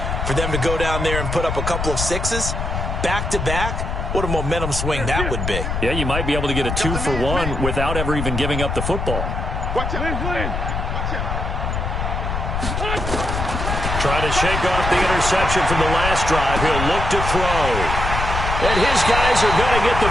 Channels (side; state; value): left; noise; rumble, 3 dB below the sound